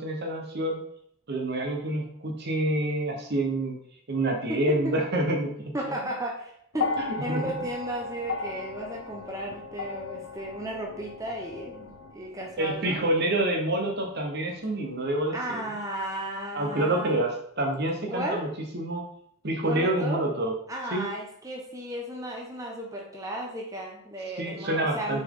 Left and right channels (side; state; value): both; normal; correlation 0.16